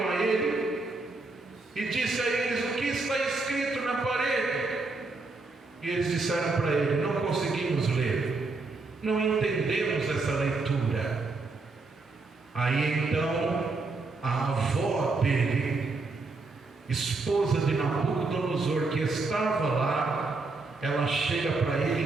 a ele, e disse a eles: o que está escrito na parede? E eles disseram para ele: não conseguimos ler, não entendemos essa leitura. Aí então a avó dele, esposa de Nabucodonosor, que estava lá, ela chega para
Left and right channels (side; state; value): left; quieter; 3.6 dB